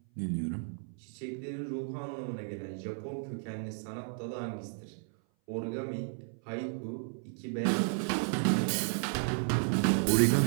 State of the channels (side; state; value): left; silent; 56 dB below the other